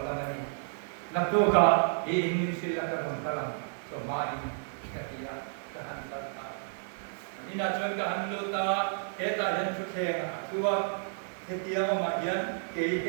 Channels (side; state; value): left; silent; digital silence